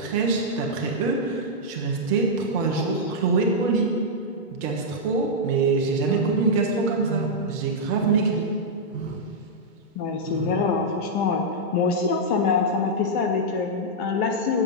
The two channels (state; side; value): late; right; 2.2 ms